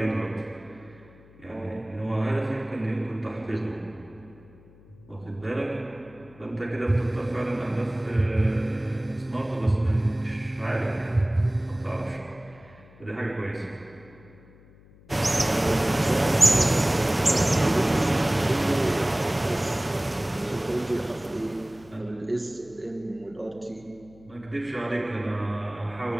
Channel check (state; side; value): noise; left; hum, 24 dB below the sound